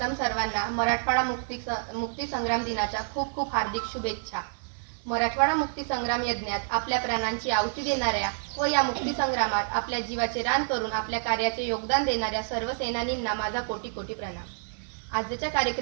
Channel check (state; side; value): silent; left; digital silence